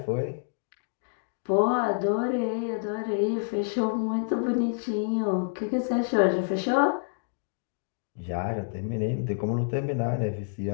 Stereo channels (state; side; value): silent; right; digital silence